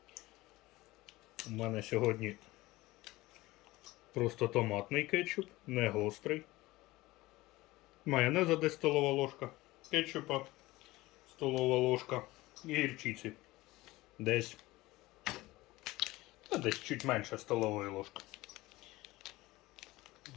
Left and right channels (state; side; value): quieter; right; 19.2 dB